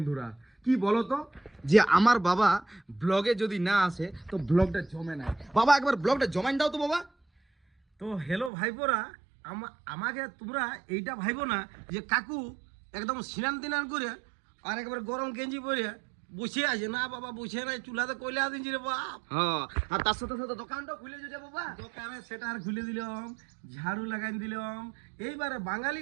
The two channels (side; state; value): left; drops out; at 8.5 s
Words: কি বলতো যে আমার বাবা ব্লগে যদি না আসে তো ব্লগটা জমে না। বাবা একবার ব্লগটা জমাইন দাও তো বাবা। তো হ্যালো ভাইপোরা, আমাকে তোমরা এইটা ভাইবো না যে কাকু একদম স্নান তিনান করে আর একবার গরম গেঞ্জি পরে বসে আছে। না বাবা বসে নাই, চুলাতে কইলা দিনছি রে বাপ। হ্যাঁ আর তার সাথে সাথে দোকানটা খুলে যেতে বাবা। দোকানে সেটার খুলে দিলাম, ঝাড়ু লাগাই দিলাম। এইবারে বাঙালি